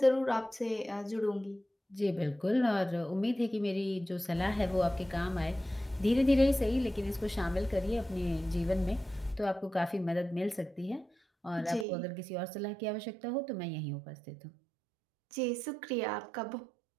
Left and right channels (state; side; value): drops out; left; at 11.9 s